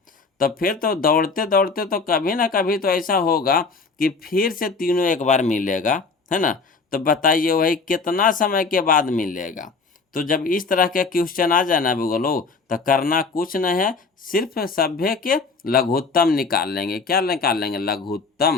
तो फिर तो दौड़ते दौड़ते तो कभी ना कभी तो ऐसा होगा कि फिर से तीनों एक बार मिलेगा, है ना। तो बताइए वही कितना समय के बाद मिलेगा। तो जब इस तरह के क्वेश्चन आ जाए ना बोलो, तो करना कुछ नहीं है, सिर्फ सभ्य के लघुत्तम निकाल लेंगे। क्या निकाल लेंगे?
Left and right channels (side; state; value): right; quieter; 4.4 dB